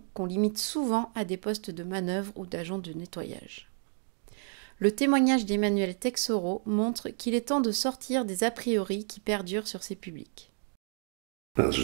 qu'on limite souvent à des postes de manœuvre ou d'agent de nettoyage. Le témoignage d'Emmanuel Texoro montre qu'il est temps de sortir des a priori qui perdurent sur ces publics. Je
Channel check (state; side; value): silent; left; 57 dB below the other